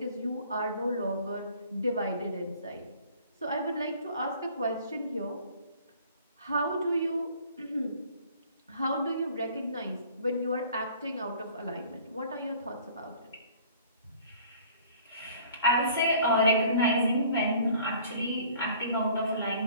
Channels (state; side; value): inverted; both; correlation -0.52